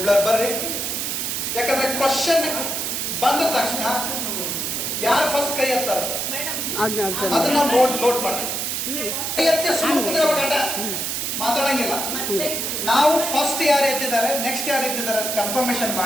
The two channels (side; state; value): right; noise; hiss, 2 dB below the sound